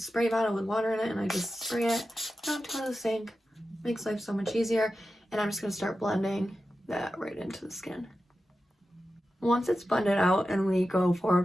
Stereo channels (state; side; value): normal; both; correlation 0.92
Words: spray bottle with water in it, and I just spray it. Don't go to the sink. Makes life so much easier. And I'm just gonna start blending that right into the skin. Once it's blended out and we go